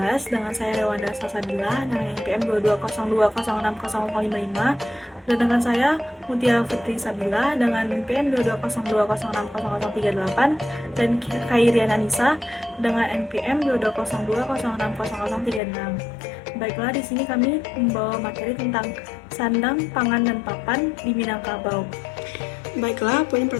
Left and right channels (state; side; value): drops out; right; at 15.6 s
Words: dengan saya Rewanda Salsabila dengan NPM 2202060555 dan dengan saya Mutia Fitri Sabila dengan NPM 2202060038 dan Khairian Anissa dengan NPM 2202060036. Baiklah, di sini kami membawa materi tentang sandang, pangan, dan papan di Minangkabau. Baiklah, poin